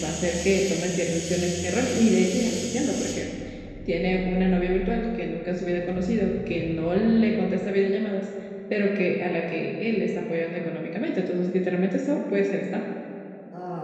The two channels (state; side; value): identical; both; correlation 1.00